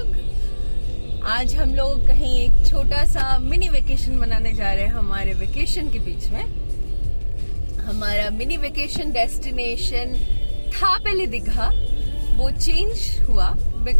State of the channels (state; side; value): inverted; both; correlation -1.00